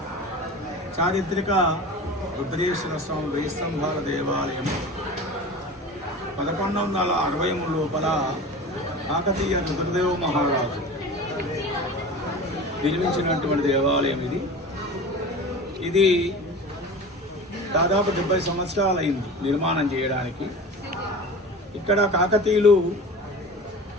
చారిత్రక రుద్రేశ్వర స్వామి వెయ్యి స్తంభాల దేవాలయం 1160 లోపల కాకతీయ రుద్రదేవ మహారాజు నిర్మించినటువంటి దేవాలయం ఇది దాదాపు 70 సంవత్సరాలు అయింది నిర్మాణం చేయడానికి. ఇక్కడ కాకతీయులు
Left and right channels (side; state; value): both; normal; correlation 0.35